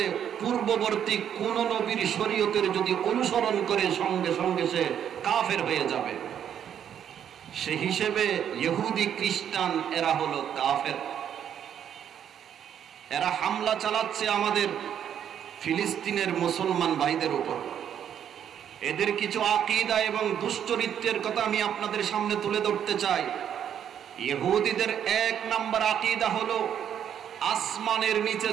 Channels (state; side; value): quieter; left; 9.2 dB